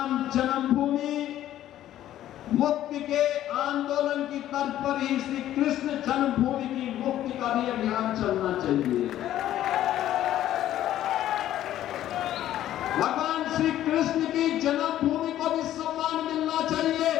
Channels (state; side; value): quieter; right; 12.6 dB